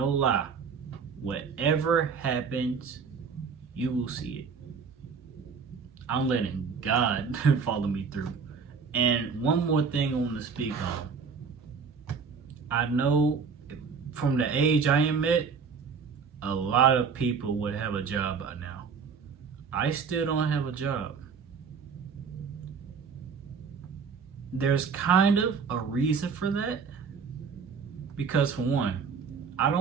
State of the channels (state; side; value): quieter; left; 5.8 dB